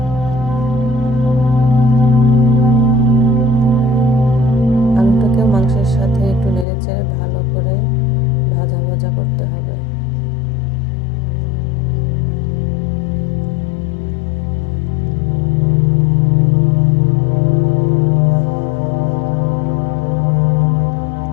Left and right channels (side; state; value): right; drops out; at 6.7 s